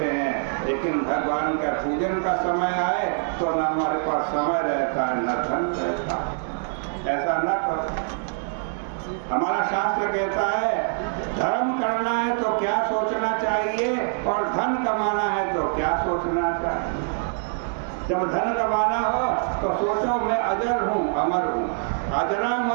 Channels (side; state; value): left; silent; 62 dB below the other